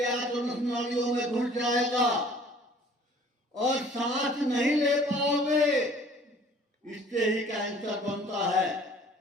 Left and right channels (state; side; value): normal; both; correlation 0.52